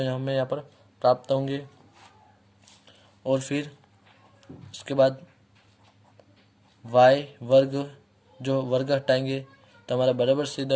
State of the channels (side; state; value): both; identical; correlation 1.00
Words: हमें यहाँ पर प्राप्त होंगे। और फिर उसके बाद y वर्ग, जो वर्ग हटाएंगे तो हमारा बराबर से